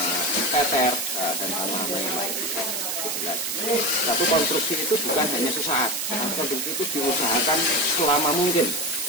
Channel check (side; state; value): right; noise; hiss, 1 dB below the sound